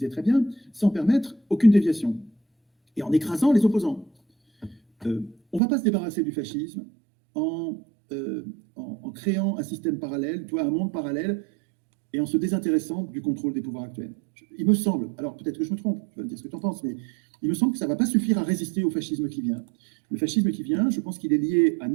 très bien, sans permettre aucune déviation et en écrasant les opposants. On ne va pas se débarrasser du fascisme en créant un système parallèle, un monde parallèle, et en se désintéressant du contrôle des pouvoirs actuels. Il me semble, alors peut-être que je me trompe, tu vas me dire ce que tu en penses, mais il me semble que ça ne va pas suffire à résister au fascisme qui vient. Le fascisme qui vient, je pense qu'il est lié à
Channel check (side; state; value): left; drops out; at 5.6 s